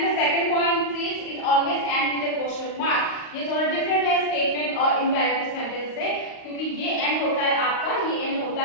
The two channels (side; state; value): right; late; 38 ms